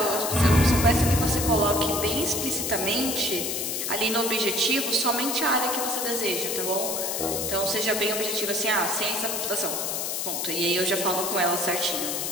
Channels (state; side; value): noise; left; hiss, 2 dB below the sound